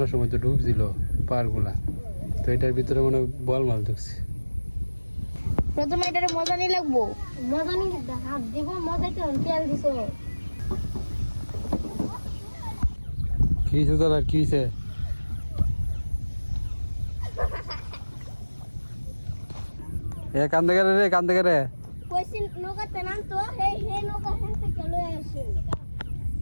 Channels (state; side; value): inverted; both; correlation -1.00